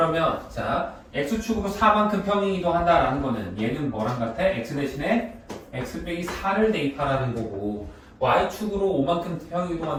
자 x축으로 4만큼 평행이동한다라는 거는 얘는 뭐랑 같아? x 대신에 x 빼기 4를 대입하라는 거고 y축으로 5만큼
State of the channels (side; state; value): both; identical; correlation 1.00